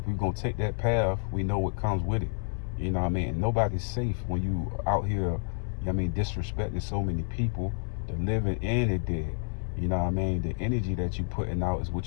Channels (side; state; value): right; silent; 58 dB below the other